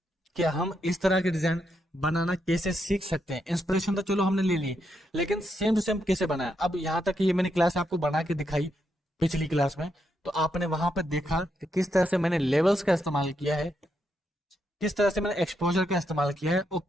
कि हम इस तरह के डिजाइन बनाना कैसे सीख सकते हैं। इंस्पिरेशन तो चलो हमने ले ली, लेकिन सेम टू सेम कैसे बनाया। अब यहाँ तक ये मैंने क्लास आपको बना के दिखाई पिछली क्लास में, तो आपने वहां पर देखा कि किस तरह से मैंने लेवल्स का इस्तेमाल किया है, किस तरह से मैंने एक्सपोजर का इस्तेमाल किया है और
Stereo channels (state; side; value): normal; both; correlation 0.81